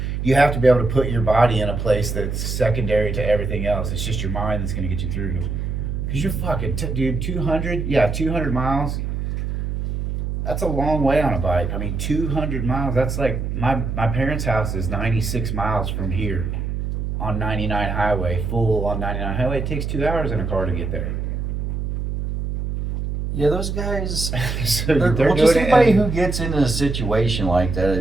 You have to be able to put your body in a place that's secondary to everything else. It's just your mind that's going to get you through. Because you're fucking, dude, 200 miles. That's a long way on a bike. I mean, 200 miles, that's like, my parents' house is 96 miles from here on 99 highway, full on 99 highway. It takes 2 hours in a car to get there. Yeah, those guys. So Well, they're just doing it anybody in- who gets into a situation like that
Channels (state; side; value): noise; right; hum, 3 dB below the sound